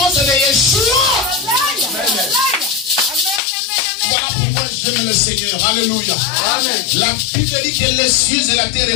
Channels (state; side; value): drops out; right; at 3.4 s